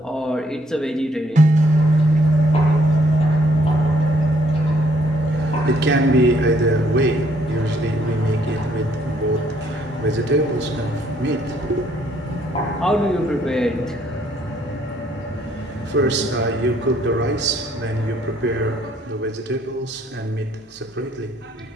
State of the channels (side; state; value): both; normal; correlation 0.67